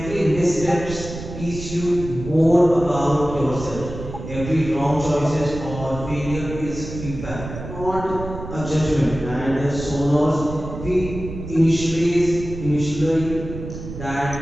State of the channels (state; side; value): noise; right; rumble, 10 dB below the sound